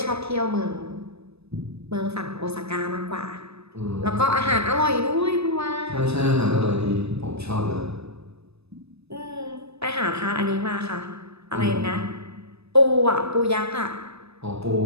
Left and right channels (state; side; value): late; left; 0.79 ms